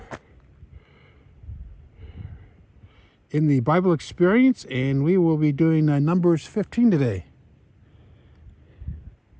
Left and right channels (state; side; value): identical; both; correlation 1.00